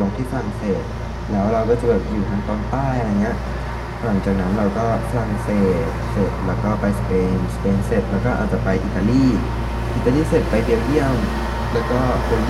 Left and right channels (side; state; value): both; identical; correlation 1.00